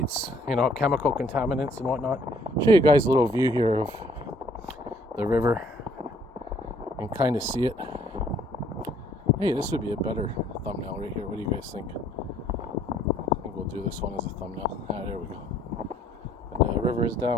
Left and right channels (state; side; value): normal; both; correlation 0.61